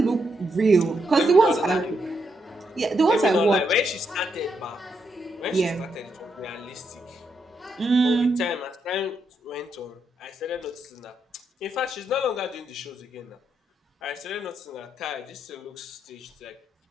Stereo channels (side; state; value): both; normal; correlation 0.80